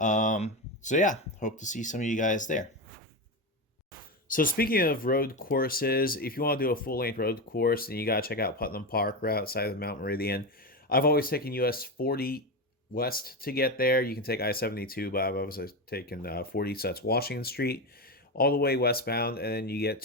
yeah, hope to see some of you guys there. So speaking of road courses, if you want to do a full-length road course, then you got to check out Putnam Park right outside of Mount Meridian. I've always taken US 40 west to get there. You can take I-72, but I've always taken 40, so that's Washington Street, all the way westbound, and then you get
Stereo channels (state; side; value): normal; both; correlation 0.16